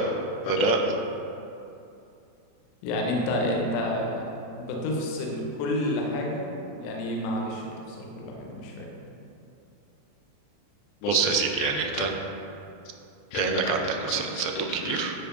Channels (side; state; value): right; late; 40 ms